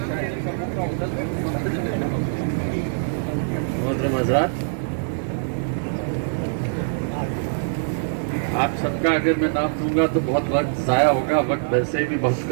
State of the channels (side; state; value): left; silent; 63 dB below the other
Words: मोहतरम हज़रात, आप सबका अगर मैं नाम दूंगा तो बहुत वक्त ज़ाया होगा। वक्त वैसे भी बहुत